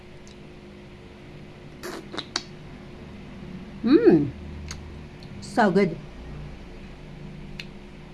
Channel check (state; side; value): identical; both; correlation 1.00